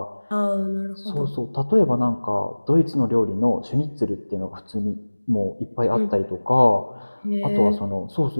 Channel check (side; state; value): both; inverted; correlation -1.00